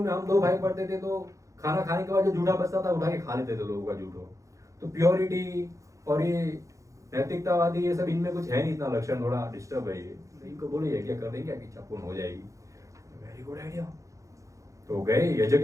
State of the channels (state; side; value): late; left; 0.15 ms